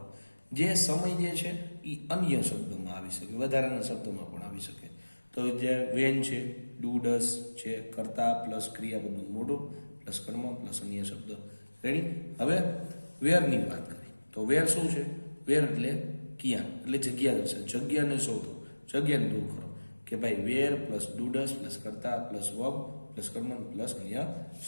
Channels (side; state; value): both; inverted; correlation -1.00